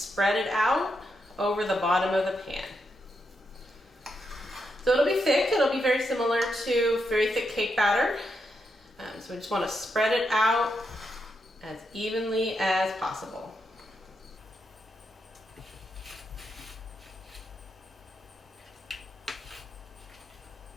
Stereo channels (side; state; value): both; normal; correlation 0.82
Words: it out over the bottom of the pan. So it'll be thick. It'll be very similar to very thick cake batter. So we just want to spread it out as evenly as possible.